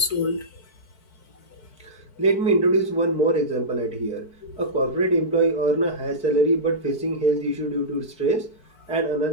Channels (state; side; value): late; right; 4.6 ms